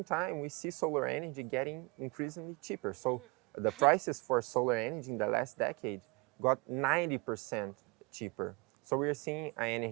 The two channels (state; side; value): quieter; left; 28.1 dB